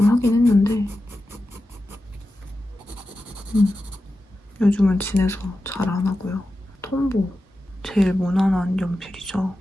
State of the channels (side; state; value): both; normal; correlation 0.92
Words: 하긴 했는데 요즘은 진해서 잘 안 하고요. 톰보 제일 무난한 연필이죠.